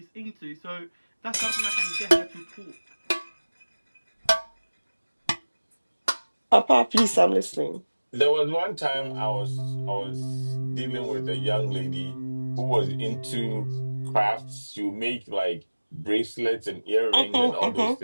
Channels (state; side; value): inverted; both; correlation -1.00